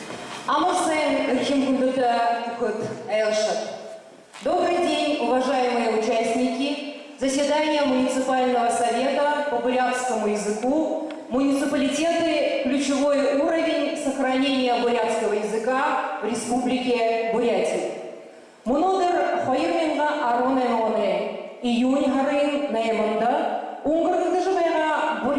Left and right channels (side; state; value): both; identical; correlation 1.00